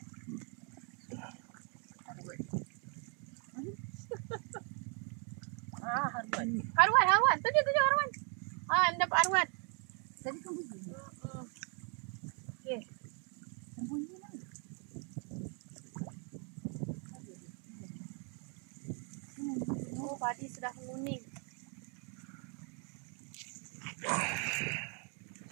Haruan. Tunjuk haruan. Dapat haruan. Tadi kan bunyi. Okey. Bunyi mana? Oh, padi sudah menguning.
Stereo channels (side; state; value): left; quieter; 38.3 dB